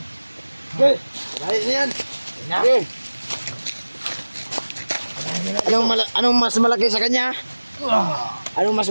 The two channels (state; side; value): inverted; both; correlation -1.00